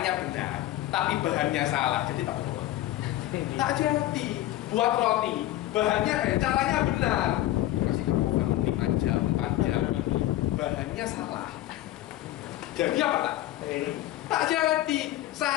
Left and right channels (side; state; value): right; quieter; 14.8 dB